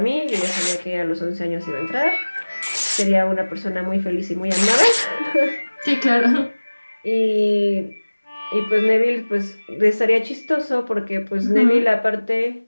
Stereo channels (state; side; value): inverted; both; correlation -1.00